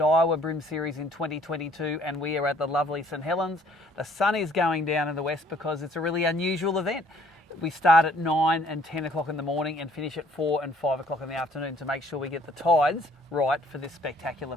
BREAM Series in 2022 and we are at the lovely St Helens. The sun is going down in the west because it's a really unusual event. We start at 9 and 10 o'clock in the morning and finish at 4 and 5 o'clock in the afternoon to make sure we get the tides right for this spectacular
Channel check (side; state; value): both; normal; correlation 0.60